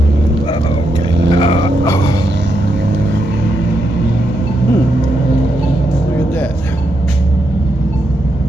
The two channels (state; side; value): normal; both; correlation 0.81